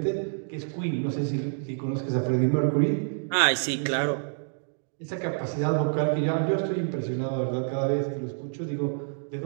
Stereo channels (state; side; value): silent; left; digital silence